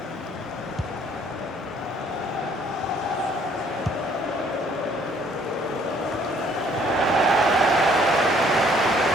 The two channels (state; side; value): normal; both; correlation 0.61